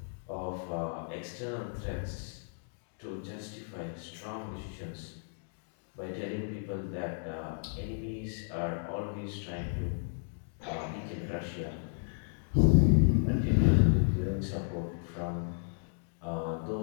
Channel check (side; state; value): right; silent; digital silence